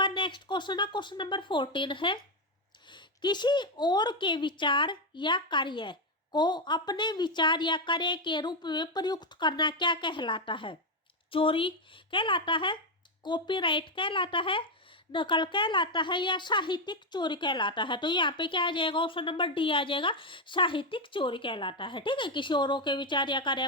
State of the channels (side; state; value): both; normal; correlation 0.06